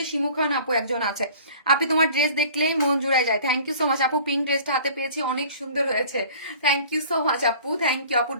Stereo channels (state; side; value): inverted; both; correlation -0.47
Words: শিমু খান আপু একজন আছে। আপনি তোমার ড্রেস দেখলেই মন জুড়ায় যায়, থ্যাংক ইউ সো মাচ আপু। পিঙ্ক ড্রেসটা হাতে পেয়েছি, অনেক সুন্দর হয়েছে, থ্যাংক ইউ সো মাচ আপু, থ্যাংক ইউ আপু।